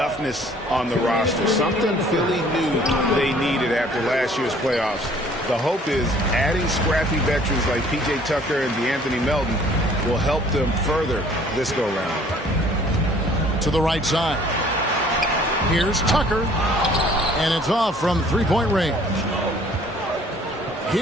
on the roster. Something Philly knew they needed after last year's playoffs. The hope is adding scrappy veterans like P.J. Tucker and DeAnthony Melton will help them further this go-round. To the right side. Here's Tucker. And it's off from three-point range.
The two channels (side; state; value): both; normal; correlation 0.56